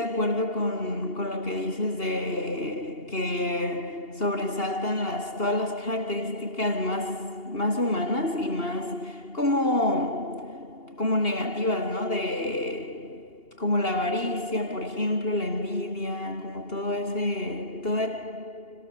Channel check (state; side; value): late; right; 2.8 ms